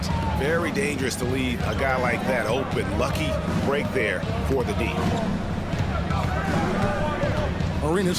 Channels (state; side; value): identical; both; correlation 1.00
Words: Very dangerous to leave a guy like that open. Lucky break there for the D.